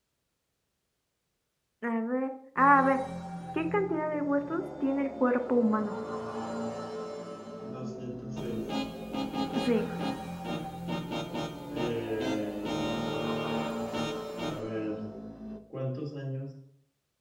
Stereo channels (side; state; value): both; identical; correlation 1.00